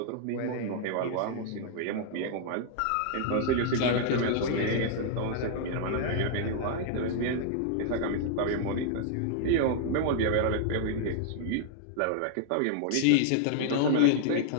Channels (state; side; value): different; both; correlation -0.01